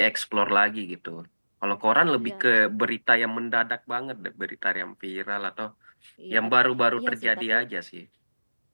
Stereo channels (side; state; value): both; inverted; correlation -1.00